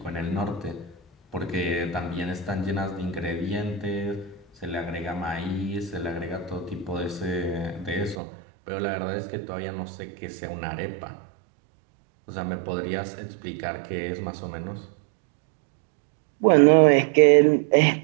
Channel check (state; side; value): drops out; left; at 8.2 s